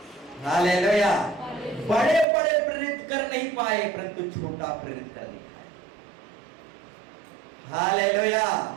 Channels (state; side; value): drops out; left; at 2.2 s